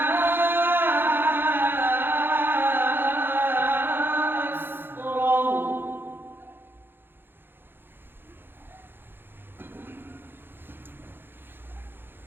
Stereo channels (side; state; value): left; late; 0.10 ms